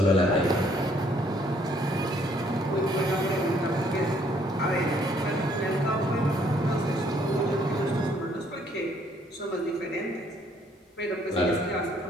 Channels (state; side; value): normal; both; correlation 0.65